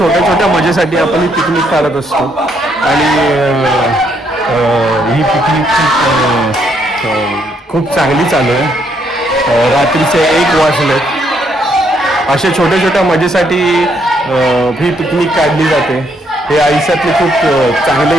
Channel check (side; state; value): both; normal; correlation 0.72